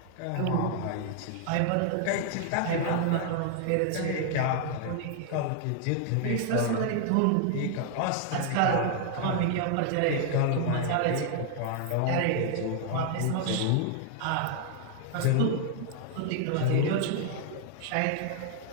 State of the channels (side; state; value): both; different; correlation 0.00